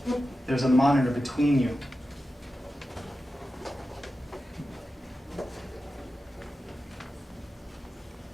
there's a monitor between you.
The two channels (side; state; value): both; normal; correlation 0.92